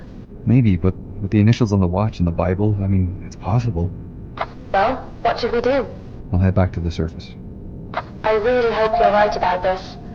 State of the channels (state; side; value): identical; both; correlation 1.00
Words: Maybe, but with the initials on the watch and the Bible, I mean, it's possible. Well, what should we do? I'll head back to the surface. I really hope you're right about this.